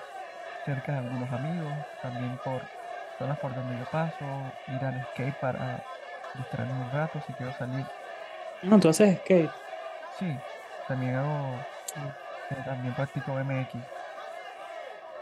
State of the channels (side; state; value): both; identical; correlation 1.00